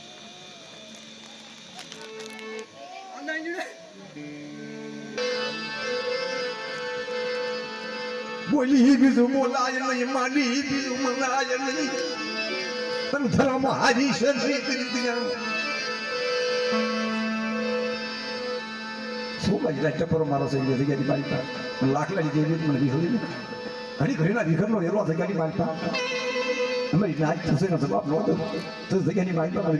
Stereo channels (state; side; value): identical; both; correlation 1.00